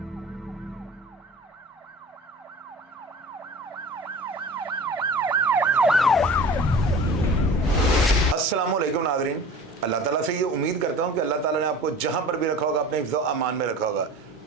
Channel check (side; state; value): both; normal; correlation 0.40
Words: नाज़रीन, अल्लाह ताला से ये उम्मीद करता हूँ कि अल्लाह ताला ने आपको जहाँ पर भी रखा होगा अपने हिफ्ज़ अमान में रखा होगा।